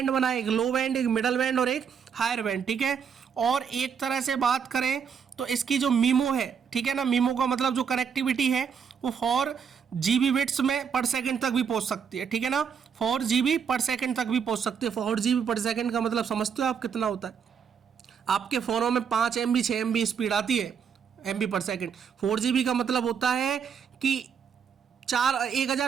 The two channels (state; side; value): quieter; left; 7.0 dB